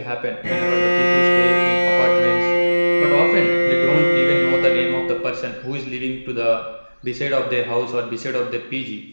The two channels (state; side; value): inverted; both; correlation -1.00